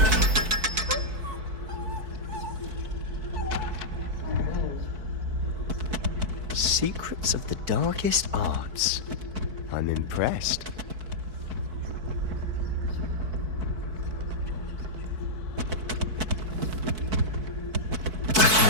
Secrets of the darkest arts. I'm impressed.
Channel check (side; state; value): left; late; 4.6 ms